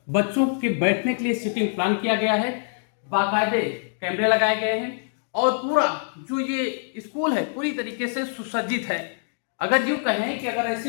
बच्चों के बैठने के लिए सीटिंग प्लान किया गया है। बाकायदे कैमरे लगाए गए हैं और पूरा जो ये स्कूल है पूरी तरीके से सुसज्जित है। अगर यूँ कहें कि अगर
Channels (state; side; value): silent; right; digital silence